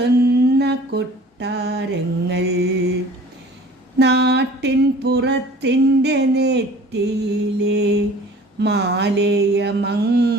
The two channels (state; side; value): normal; both; correlation 0.47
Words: കൊട്ടാരങ്ങൾ. നാട്ടിൻ പുറത്തിൻ്റെ നെറ്റിയിലെ മാലയ